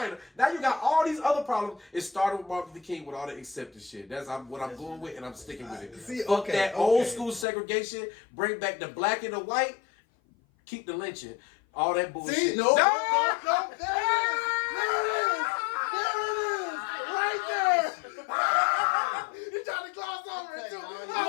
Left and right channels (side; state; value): right; drops out; at 7.5 s